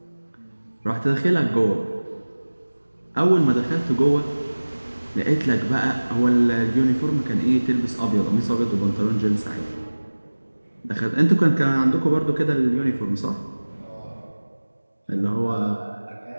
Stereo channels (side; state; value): both; inverted; correlation -1.00